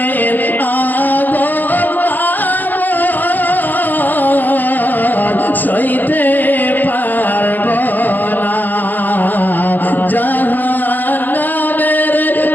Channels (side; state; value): right; late; 0.086 ms